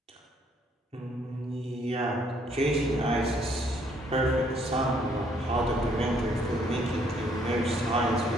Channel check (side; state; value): both; normal; correlation 0.66